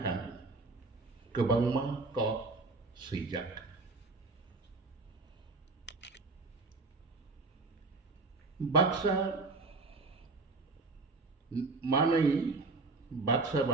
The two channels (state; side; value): quieter; left; 3.6 dB